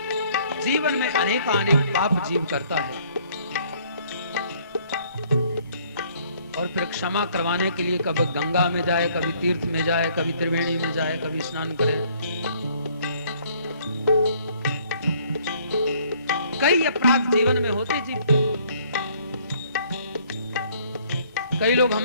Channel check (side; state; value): both; inverted; correlation -0.61